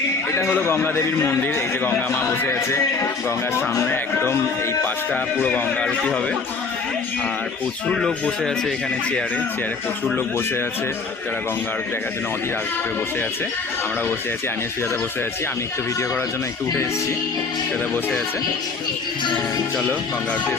এটা হলো গঙ্গা দেবীর মন্দির। এই যে গঙ্গা মা বসে আছে গঙ্গার সামনে, একদম এই পাশটা পুরো গঙ্গা আরতি হবে। আর প্রচুর লোক বসে আছে এখানে, চেয়ারে চেয়ারে প্রচুর লোক বসে আছে, যারা গঙ্গা আরতি দেখার জন্য অধীর আগ্রহে বসে আছে। আমরা বসে আছি, আমিও সুজাতা বসে আছি। আমি একটু ভিডিও করার জন্য একটু উঠে এসেছি, সুজাতা বসে আছে। চলো গঙ্গা আরতি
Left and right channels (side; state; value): right; quieter; 4.5 dB